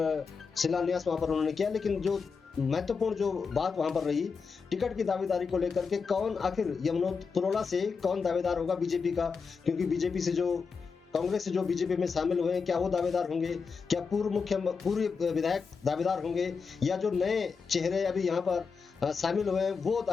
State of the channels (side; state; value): right; quieter; 5.3 dB